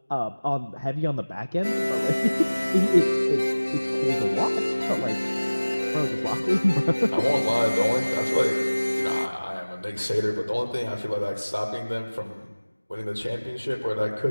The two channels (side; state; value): both; inverted; correlation -1.00